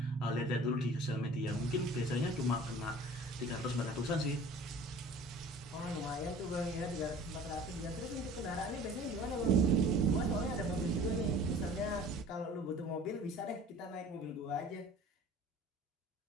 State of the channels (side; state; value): both; normal; correlation 0.45